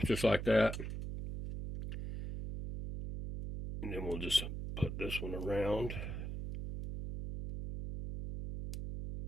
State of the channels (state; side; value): noise; right; hum, 5 dB below the sound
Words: just like that. And then we'll just put this one around